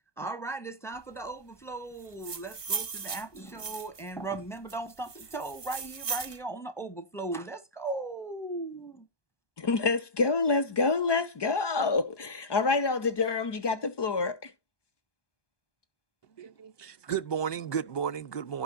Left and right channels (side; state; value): right; late; 1.2 ms